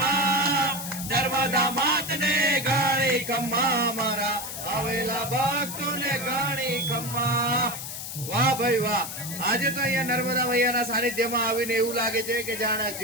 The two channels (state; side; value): noise; left; hiss, 7 dB below the sound